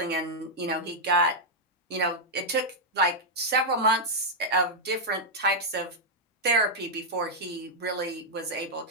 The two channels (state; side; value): normal; both; correlation -0.04